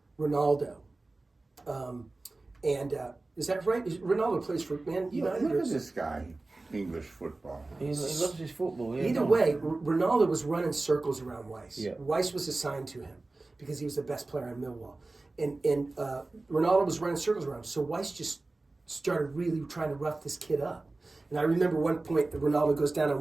Ronaldo. Is that right? Ronaldo plays for Man United? Look at this guy, English football. He loves his football. Yeah, Either no. way, Ronaldo was running circles around Weiss. Yeah. Weiss was assigned to him because he was the best player in Millwall. And Ronaldo was running circles around him. So Weiss just started really trying to rough this kid up. And I remember one point that Ronaldo goes down on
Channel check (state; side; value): quieter; left; 3.2 dB